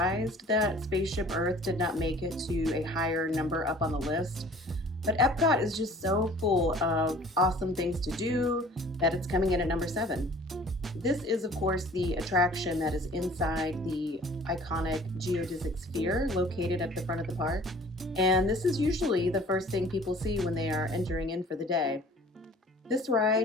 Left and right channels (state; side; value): normal; both; correlation 0.50